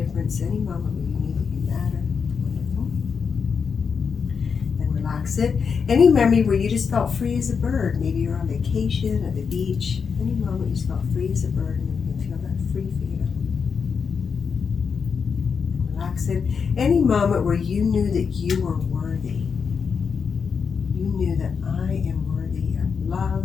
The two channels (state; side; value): quieter; right; 6.0 dB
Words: Any moment where you knew that you matter. Wonderful. And relax it. Any memory where you just felt free as a bird. Maybe you're on vacation at the beach. Any moment you just felt free as a bird, and you can feel that free feeling. Relax it. Any moment where you knew that you were worthy. You knew that I am worthy of love,